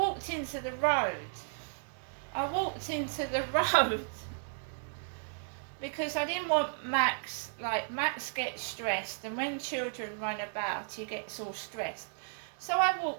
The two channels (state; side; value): silent; left; digital silence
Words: into the road. I walked into the road because I didn't want Max gets stressed, and when children run about, he gets all stressed. So I